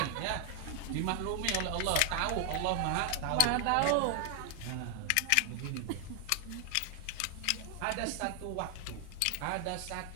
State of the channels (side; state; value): both; different; correlation 0.00